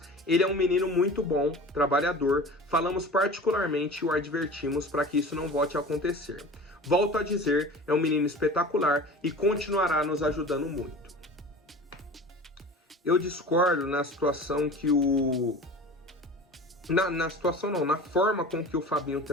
Ele é um menino muito bom, trabalhador. Falamos particularmente e o advertimos para que isso não volte a acontecer. Volto a dizer, é um menino espetacular e continuará nos ajudando muito. Eu discordo na situação que na forma com que o Fabinho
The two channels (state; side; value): normal; both; correlation 0.37